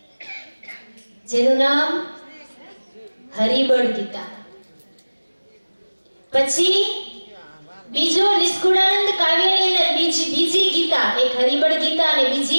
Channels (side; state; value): both; inverted; correlation -1.00